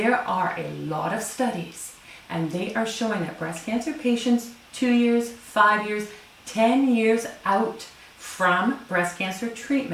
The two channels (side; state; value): both; identical; correlation 1.00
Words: are a lot of studies and they are showing that breast cancer patients 2 years, 5 years, 10 years out from breast cancer